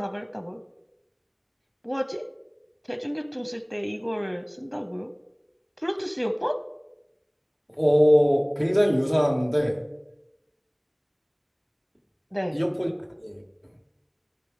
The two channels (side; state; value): both; identical; correlation 1.00